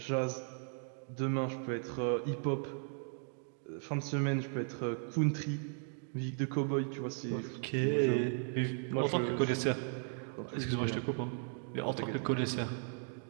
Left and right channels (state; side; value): silent; left; 54 dB below the other